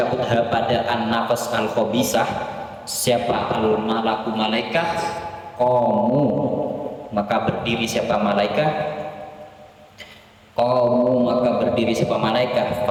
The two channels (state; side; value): identical; both; correlation 1.00